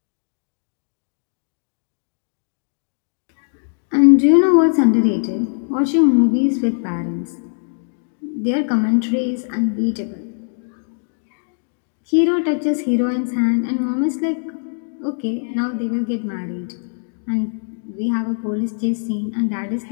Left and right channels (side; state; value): right; silent; digital silence